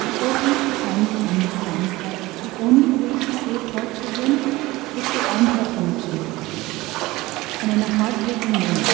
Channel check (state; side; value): quieter; left; 19.6 dB